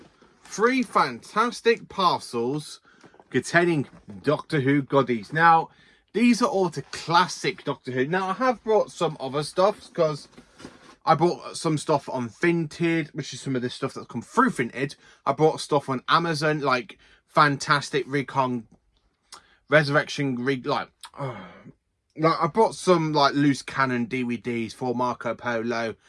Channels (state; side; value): identical; both; correlation 1.00